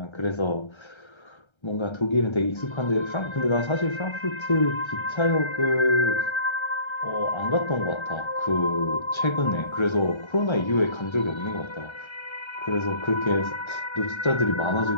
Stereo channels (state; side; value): late; right; 1.3 ms